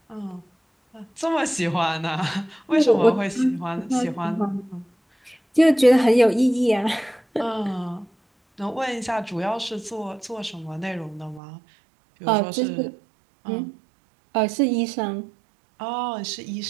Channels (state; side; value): drops out; left; at 11.4 s